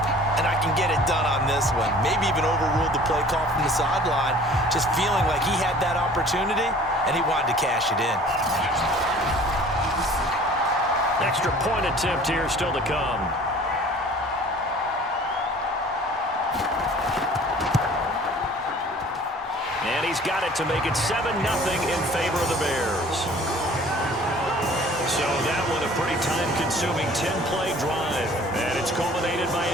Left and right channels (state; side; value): normal; both; correlation 0.49